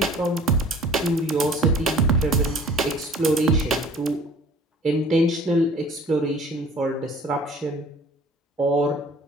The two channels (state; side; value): normal; both; correlation 0.50